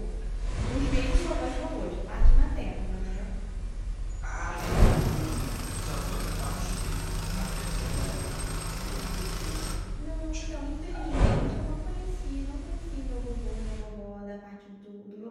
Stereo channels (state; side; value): identical; both; correlation 1.00